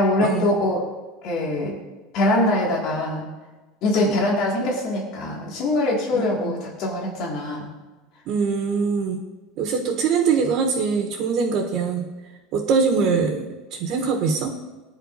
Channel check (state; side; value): normal; both; correlation 0.32